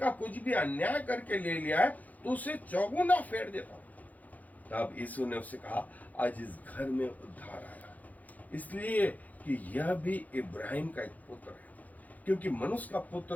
कुछ भी अन्याय करके ले लिया है तो उसे चौगुना फेर देता हूँ। तब यीशु ने उससे कहा, आज इस घर में उद्धार आया, इसलिए कि यह भी इब्राहिम का एक पुत्र है, क्योंकि मनुष्य का पुत्र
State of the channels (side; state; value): right; late; 0.078 ms